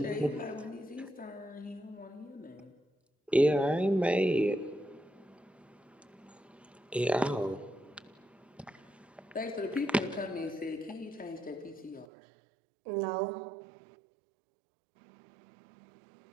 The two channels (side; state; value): left; drops out; at 12.1 s